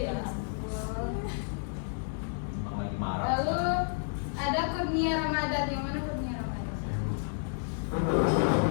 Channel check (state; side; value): silent; right; digital silence